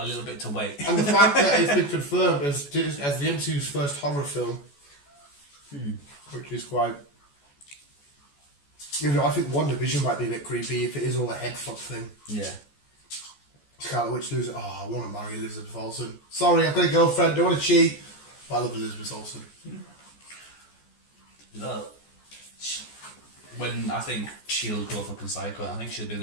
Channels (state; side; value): late; right; 14 ms